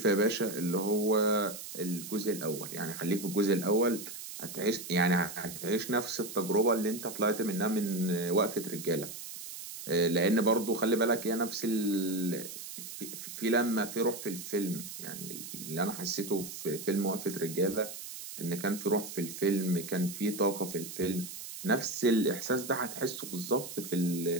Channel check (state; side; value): noise; right; hiss, 10 dB below the sound